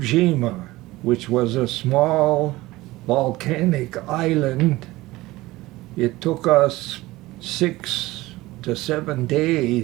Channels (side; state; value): left; quieter; 19.0 dB